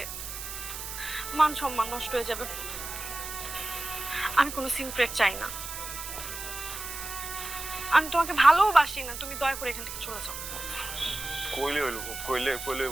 মান সম্মান নষ্ট হয়ে যাবে। আমি কোনো সিন ক্রিয়েট চাই না। আমি তোমাকে ভালোবাসি না, তুমি দয়া করে এখান থেকে চলে যাও। কইলে হইল কইলে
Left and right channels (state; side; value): noise; right; hiss, 8 dB below the sound